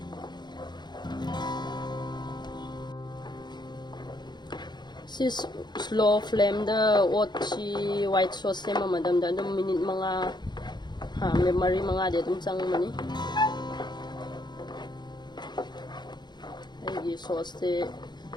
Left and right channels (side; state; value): right; late; 0.21 ms